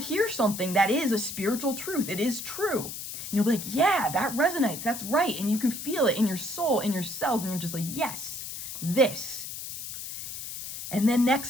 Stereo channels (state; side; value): noise; left; hiss, 8 dB below the sound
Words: something that is a spiritual truth. It is true. And you'll be like, yeah, that resonates. That's right. And you can feel it in your soul, in your cells. And you're just like, yes, this. And then